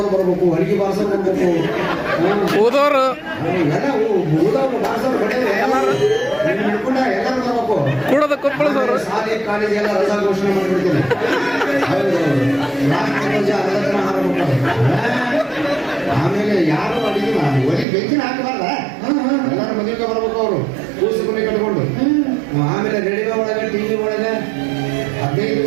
ಬರ್ಬೇಕು, ಅಡಿಗೆ ಬಾರ್ಸೋರು ಬರ್ಬೇಕು, ಊದೋರು ಎಲ್ಲ ಊದೋರು ಬಾರ್ಸೋರು ಹಿಡ್ಕೊಂಡ ಎಲ್ಲರೂ ಬರ್ಬೇಕು. ಕೂಡದ ಕೊಪ್ಪಳದವರು ಶಾಲೆ ಕಾಲೇಜ್ ಎಲ್ಲ ರಜಾ ಘೋಷಣೆ ಮಾಡ್ಬಿಡ್ತೀನಿ. ಆಮೇಲೆ ಯಾರು ಅಡಿಗೆ ಒಳಗೆ ಬೆಂಕಿನ ಹಾಕಬಾರ್ದ, ಎಲ್ಲರೂ ಮದುವೆಗೆ ಬರ್ಬೇಕು. ಅವರು ಕೂಸು ಮನೆ ಕಟ್ಕೊಂಡು ಆಮೇಲೆ ರೇಡಿಯೋ ಒಳಗೆ, TV ಒಳಗೆ 15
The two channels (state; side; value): drops out; left; at 17.9 s